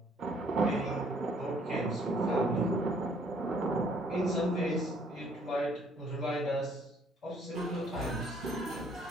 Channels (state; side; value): normal; both; correlation 0.63